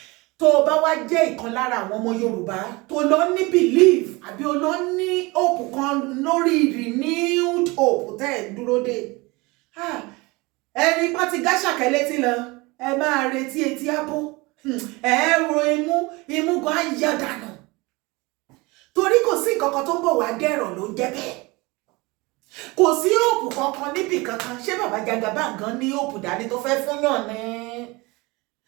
tó o bá wá jẹ́ ìkan lára àwọn ọmọ Yorùbá tó lọ ní belief àbí o lọ ní hope kan lórí renewed hope tẹ́ ẹ̀ dúró dé ẹni pọ́n ti gáṣàkẹ́ létí lọ ẹ máa retí etí ábó ẹ ro imú gan á yá dànù torí kò sí nǹkan kan tó ń bọ̀ wá dẹ̀rọ̀ ló ń jẹ́ bẹ́ẹ̀ kò sí òòpù kankan níbì kankan ṣé bàbá Jagaban gan ní òòpù dání tó fẹ́ fún yàn ní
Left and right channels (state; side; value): quieter; left; 24.2 dB